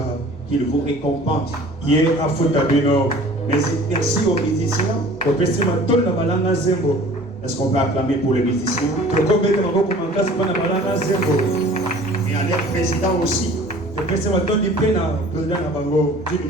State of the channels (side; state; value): both; normal; correlation 0.47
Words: qu'il vous récompense. Mais merci aux musiciens. Est-ce qu'on peut acclamer pour les musiciens? Et à leur président aussi, d'une